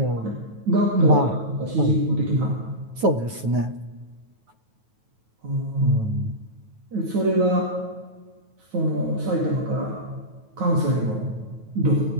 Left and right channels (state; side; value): late; left; 9.3 ms